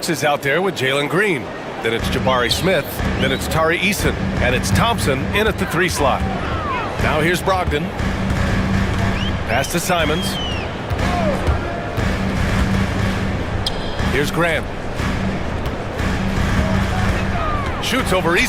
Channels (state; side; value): identical; both; correlation 1.00